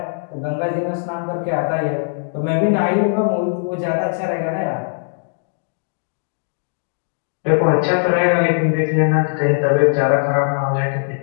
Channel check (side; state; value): right; silent; digital silence